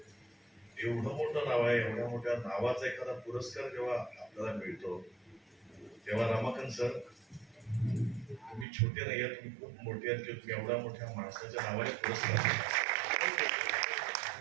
एवढं मोठं नाव आहे, एवढ्या मोठ्या नावाचा एखादा पुरस्कार जेव्हा आपल्याला मिळतो तेव्हा रमाकांत सर, तुम्ही छोटे नाही आहेत, तुम्ही खूप मोठे आहेत की तुम्ही एवढ्या मोठ्या माणसाच्या नावाने पुरस्कार.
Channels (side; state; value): left; drops out; at 8.7 s